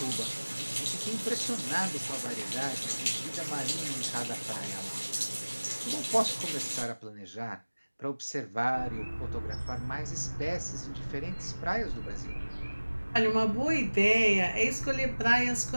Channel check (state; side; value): inverted; both; correlation -1.00